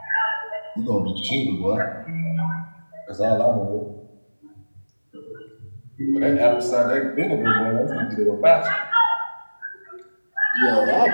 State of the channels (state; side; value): inverted; both; correlation -1.00